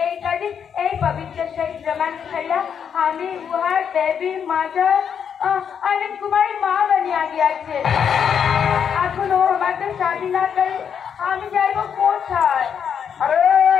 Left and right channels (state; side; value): quieter; right; 7.7 dB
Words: এই কাজে এই পবিত্র সেই প্রমাণ খেলা আমি উহার দেবী মাতার অনেক কুমারী মা বানিয়ে গিয়েছে। এখন ও আমাদের শাদি না করে আমি যাইব কোথায়? আরে